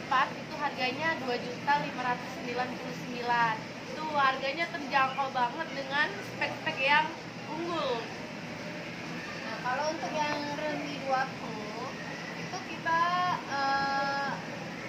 itu harganya 2.599.000. Itu harganya terjangkau banget dengan spek-spek yang unggul. Nah, kalau untuk yang Realme 2 Pro itu kita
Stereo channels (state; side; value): identical; both; correlation 1.00